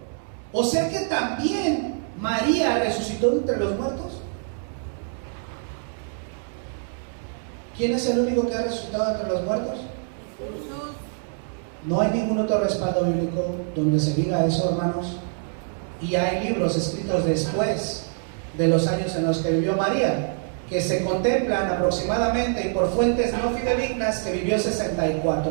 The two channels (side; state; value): left; silent; 62 dB below the other